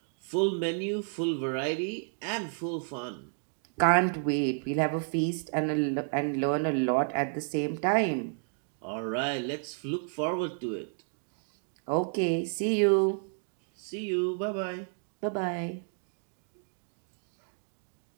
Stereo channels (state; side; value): silent; left; 57 dB below the other